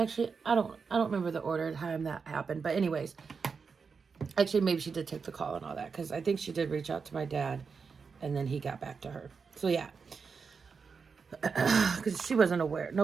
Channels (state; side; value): quieter; left; 5.4 dB